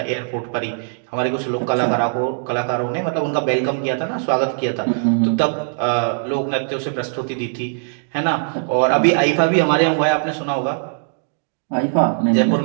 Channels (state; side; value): silent; left; digital silence